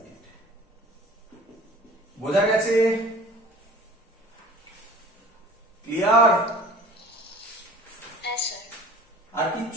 বোঝা গেছে? ক্লিয়ার? আর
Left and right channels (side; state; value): both; normal; correlation 0.45